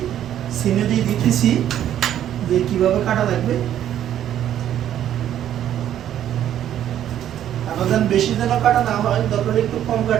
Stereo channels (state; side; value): quieter; left; 11.0 dB